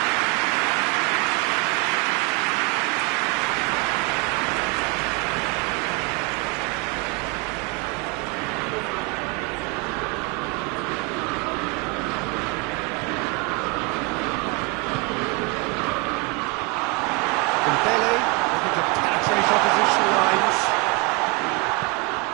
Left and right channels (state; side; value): quieter; left; 27.2 dB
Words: Dembele looking to penetrate opposition lines.